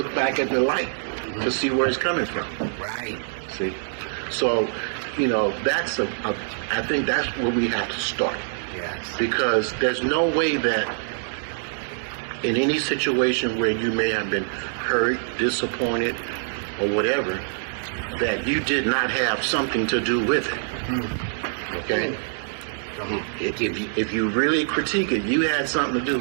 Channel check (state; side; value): silent; left; 60 dB below the other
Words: back at the light to see where it's coming from. Right. See? So, you know, I think that's where we have to start. Yes. Because there's no way that in any situation where you may have been hurt, disappointed, or whatever, that you did not have something to do with it. Okay? If you really critique it, you had something to do